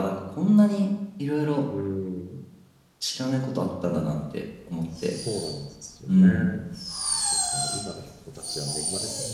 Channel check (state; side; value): identical; both; correlation 1.00